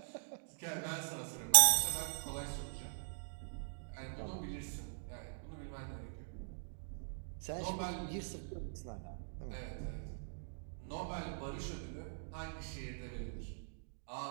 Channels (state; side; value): silent; left; digital silence